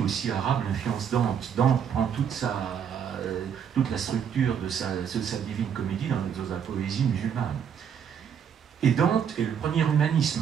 arabe influence Dante. Dante prend toute la structure de sa divine comédie dans la poésie musulmane. Et Dante est le premier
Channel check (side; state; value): left; quieter; 8.0 dB